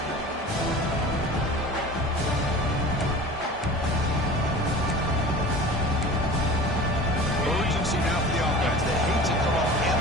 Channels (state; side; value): normal; both; correlation 0.39